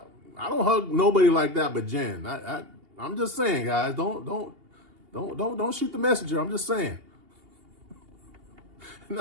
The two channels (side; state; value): left; late; 2.8 ms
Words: nobody like that but Jen. I'm just saying, guys, don't shoot the messenger. I'm just saying. And